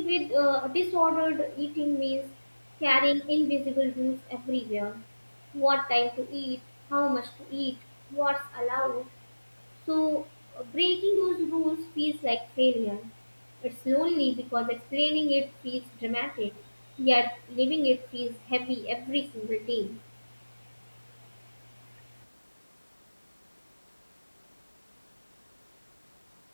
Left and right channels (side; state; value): both; inverted; correlation -1.00